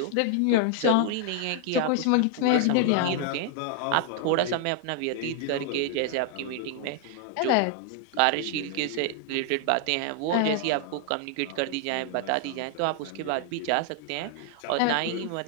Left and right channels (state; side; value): different; both; correlation 0.00